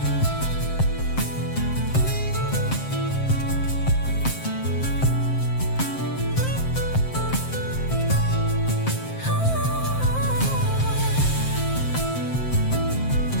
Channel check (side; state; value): right; late; 7.6 ms